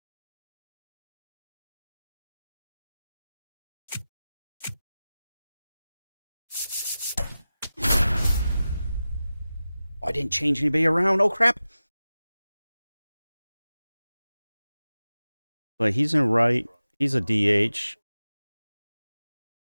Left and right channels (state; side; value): inverted; both; correlation -0.95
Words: I didn't change anybody around. Oh, crap. But he's in right. He's a DH.